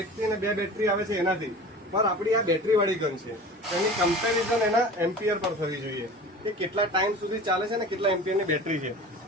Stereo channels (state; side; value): normal; both; correlation 0.38